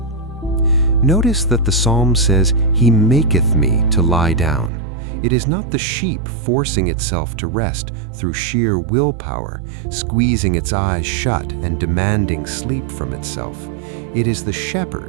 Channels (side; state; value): left; drops out; at 4.7 s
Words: Notice that the psalm says, He maketh me to lie down. It is not the sheep forcing itself to rest through sheer willpower, squeezing its eyes shut and demanding sleep from itself. It is the